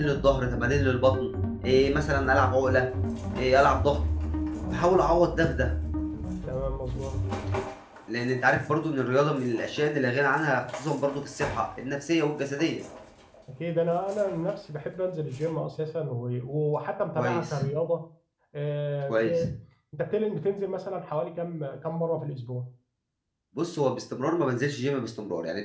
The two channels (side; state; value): both; identical; correlation 1.00